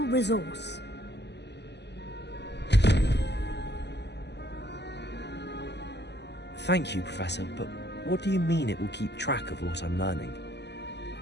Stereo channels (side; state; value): right; late; 0.50 ms